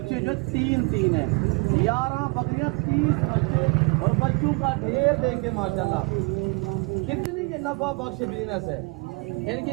جو 3 ہیں. 11 بکریاں 30 بچے اور بچوں کا ڈھیر دیں گے ماشاءاللہ. کتنی یہ نفع بخش بزنس ہے. ان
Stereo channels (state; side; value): quieter; left; 30.3 dB